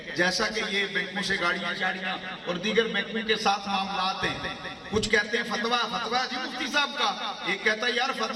جیسا کہ یہ بینکوں سے گاڑیاں اور دیگر بینکوں کے ساتھ معاملات ہیں. کچھ کہتے ہیں فتویٰ جی مفتی صاحب کا، ایک کہتا ہے یار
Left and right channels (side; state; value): both; identical; correlation 1.00